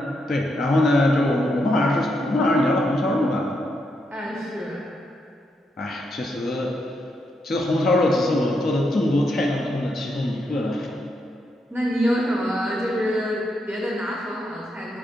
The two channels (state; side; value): normal; both; correlation 0.81